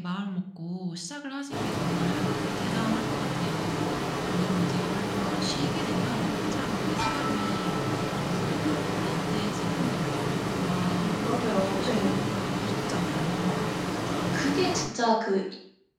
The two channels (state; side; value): identical; both; correlation 1.00